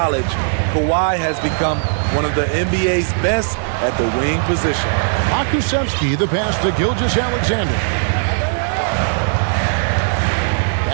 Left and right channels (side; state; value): left; silent; 64 dB below the other